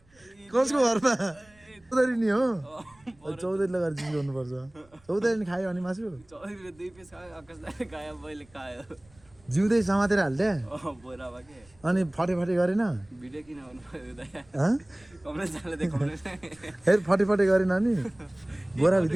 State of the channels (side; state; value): right; noise; rumble, 29 dB below the sound